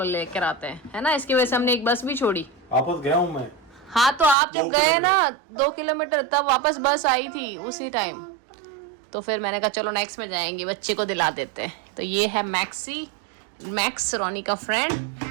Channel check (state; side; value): drops out; left; at 4.4 s